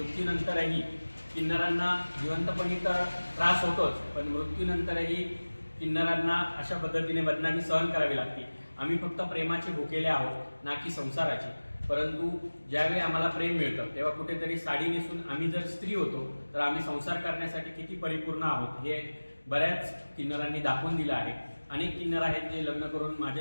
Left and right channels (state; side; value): inverted; both; correlation -1.00